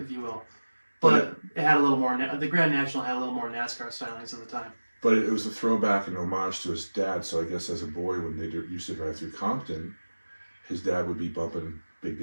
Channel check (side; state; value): both; inverted; correlation -1.00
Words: you will. But it had a little more. The Grand National had a little more NASCAR stylings at the time. But it was a throwback and homage to his dad. So I guess as a boy, when they used to drive through Compton, his dad would be bumping Big